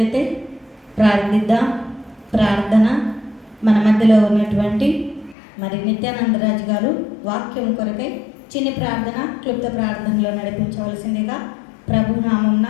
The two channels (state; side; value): drops out; right; at 5.4 s